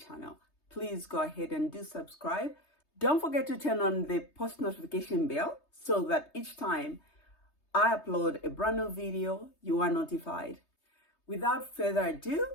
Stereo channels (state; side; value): late; right; 3.3 ms